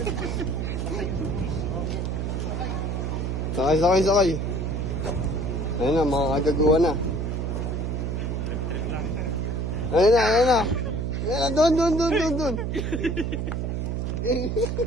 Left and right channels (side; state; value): right; noise; hum, 1 dB below the sound